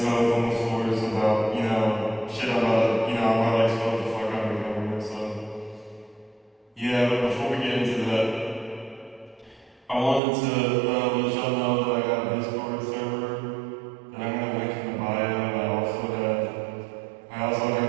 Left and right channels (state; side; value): drops out; left; at 10.2 s